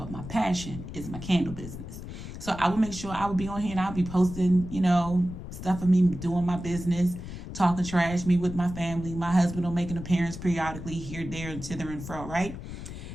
my passion is my candle business. So I will make sure I will be on here and I'll be posting, you know, stuff of me doing my business, talking trash, me with my family. My husband will make an appearance periodically here, there, and thither and fro, right?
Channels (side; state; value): left; noise; rumble, 10 dB below the sound